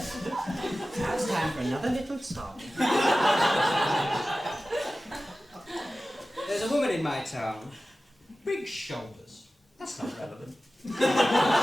Now it's time for another little song. There's a woman in my town. Big shoulders. That's not relevant. A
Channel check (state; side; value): normal; both; correlation 0.95